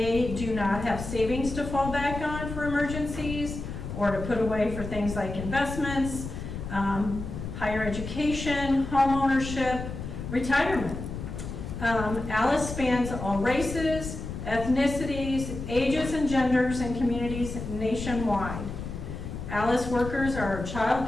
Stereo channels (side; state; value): left; noise; rumble, 7 dB below the sound